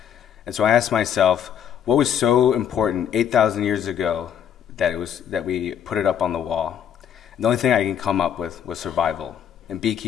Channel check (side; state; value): right; quieter; 9.0 dB